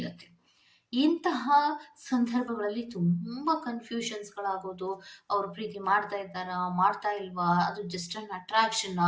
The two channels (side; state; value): both; identical; correlation 1.00